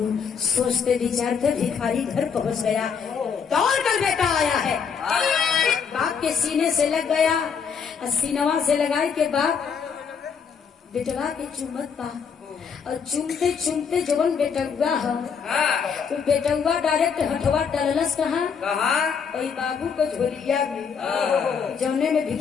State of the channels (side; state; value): right; quieter; 6.4 dB